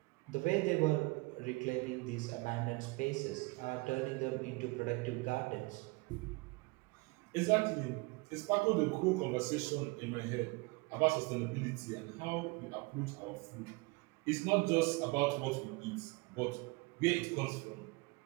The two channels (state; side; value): quieter; left; 26.2 dB